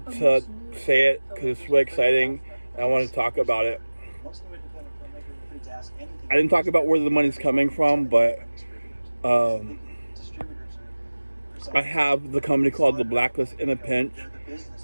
to say it because it's really exciting and I wanted to talk about it. I didn't talk about where the money's coming from, but I have the company called The Blacklist in a Pinch.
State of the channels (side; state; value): both; inverted; correlation -1.00